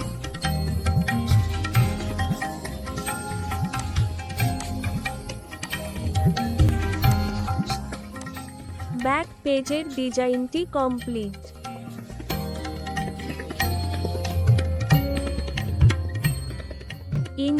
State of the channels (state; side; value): identical; both; correlation 1.00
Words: ব্যাক পেজের ডিজাইনটি কমপ্লিট।